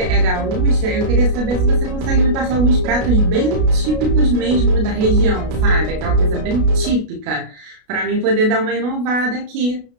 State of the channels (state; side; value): late; left; 33 ms